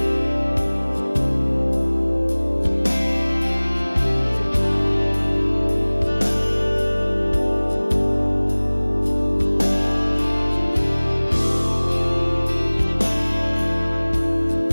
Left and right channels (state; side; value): inverted; both; correlation -1.00